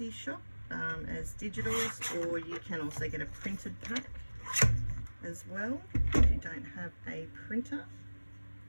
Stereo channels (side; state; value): both; inverted; correlation -1.00